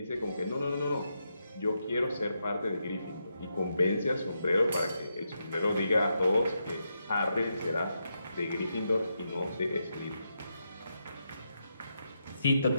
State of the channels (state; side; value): inverted; both; correlation -0.83